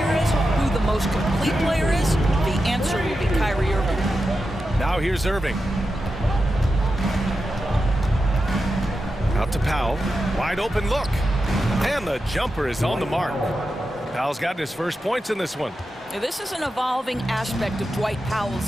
is, who the most complete player is. The answer will be Kyrie Irving. Now here's Irving. Out to Powell. Wide open look. And the jumper is on the mark. Powell's gotten his first points in this one. This is an evolving aspect of Dwight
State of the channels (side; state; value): both; normal; correlation 0.90